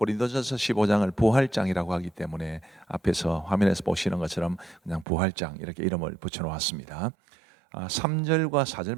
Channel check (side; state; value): left; drops out; at 5.1 s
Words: 15장을 부활장이라고 하기 때문에 앞에서 화면에서 보시는 것처럼 그냥 부활장 이렇게 이름을 붙여놓았습니다. 3절과 4절